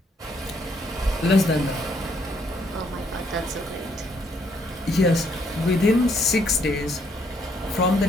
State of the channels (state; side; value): normal; both; correlation 0.70